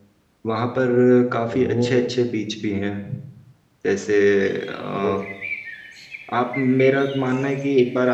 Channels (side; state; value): both; identical; correlation 1.00